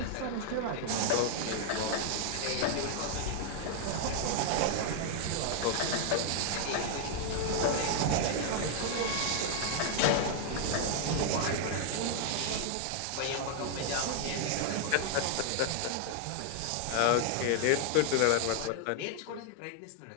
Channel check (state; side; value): different; both; correlation 0.00